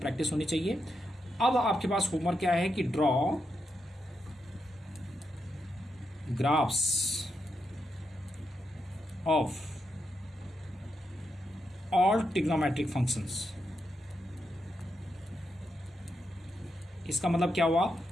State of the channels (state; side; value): normal; both; correlation 0.84